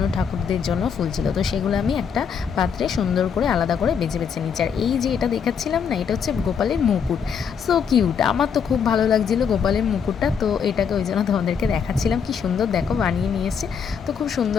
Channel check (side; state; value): right; quieter; 6.9 dB